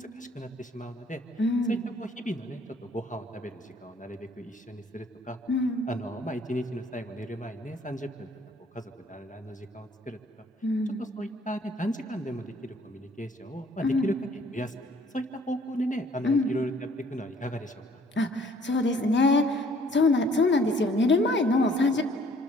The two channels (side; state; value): both; normal; correlation 0.59